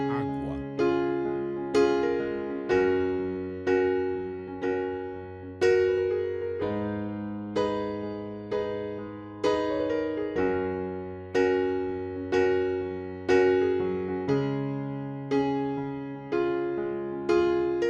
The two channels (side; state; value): both; identical; correlation 1.00